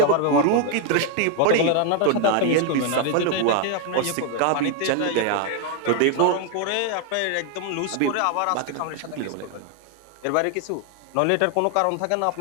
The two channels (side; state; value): both; different; correlation 0.01